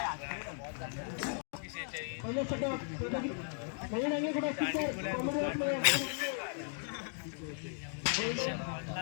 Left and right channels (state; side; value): silent; right; 53 dB below the other